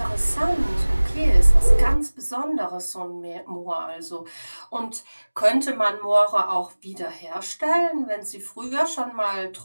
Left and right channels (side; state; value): both; inverted; correlation -1.00